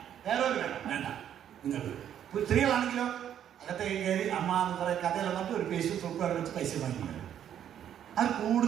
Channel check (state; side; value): quieter; left; 9.9 dB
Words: ഹെയർ ഓയിൽ വേണോ? വേണ്ട. നിങ്ങൾക്ക് സ്ത്രീകളാണെങ്കിലോ അകത്തേക്ക് കയറി അമ്മ എന്ന് കുറേ കഥയെല്ലാം പറഞ്ഞിട്ട് ഒരു പേസ്റ്റ് സോപ്പ് വേണം വെച്ച് പൈസ വാങ്ങിക്കുന്നത്. അത്